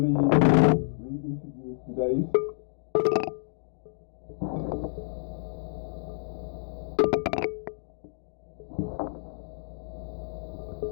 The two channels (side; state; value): right; silent; digital silence